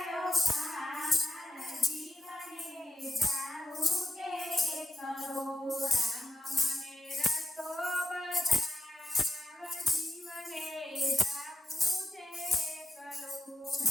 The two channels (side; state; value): both; normal; correlation 0.86